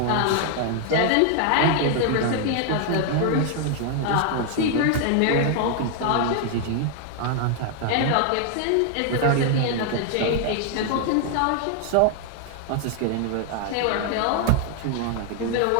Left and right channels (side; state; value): both; different; correlation 0.00